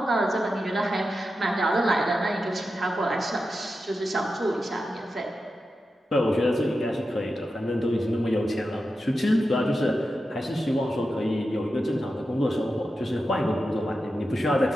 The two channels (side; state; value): both; normal; correlation 0.90